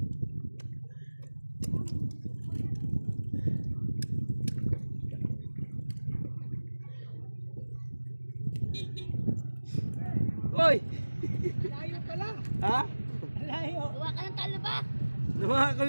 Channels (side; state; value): both; inverted; correlation -1.00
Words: Hoy! Layo pala. Ha? Layo. Gawa ka ng talaba. Lumaha